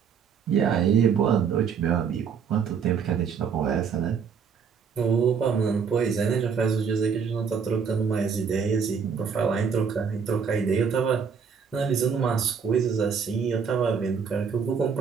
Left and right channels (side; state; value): left; quieter; 6.5 dB